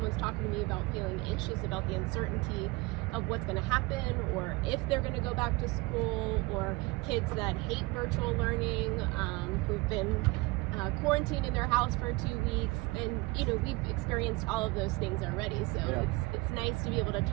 talking to me about feeling anxious about the uncertainty of what's going to happen, or if they're going to go back to school, or kids that hate virtual learning, who've been quarantined in their house for 2 weeks, and we've experienced all of those things already. So it's nice to be able to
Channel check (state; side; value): quieter; left; 23.8 dB